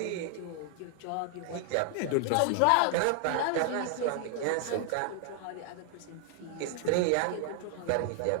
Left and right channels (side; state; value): both; different; correlation 0.00